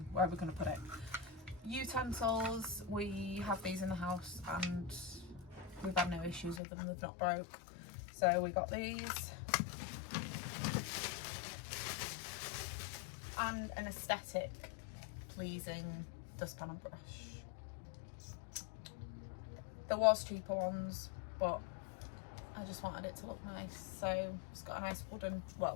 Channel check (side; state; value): right; drops out; at 6.6 s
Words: where are we going to put it? Utensils, we have these in the house and we've had no issues with them, they've not broke. So we got these. And an aesthetic pleasing dustpan and brush. There was cheaper ones, but I just wanted it to look nice, so it's got a nice wood